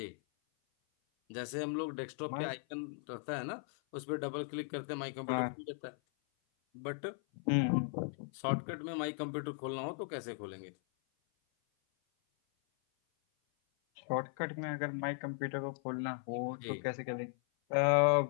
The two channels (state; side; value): silent; right; 53 dB below the other